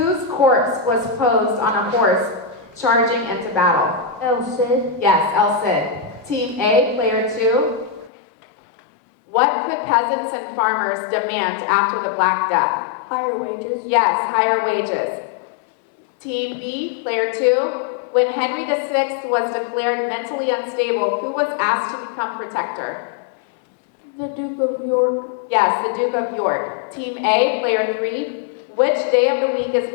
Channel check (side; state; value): right; drops out; at 8.1 s